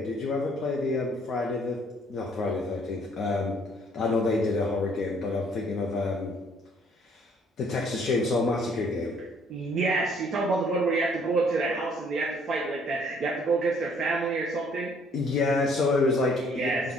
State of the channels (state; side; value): normal; both; correlation 0.62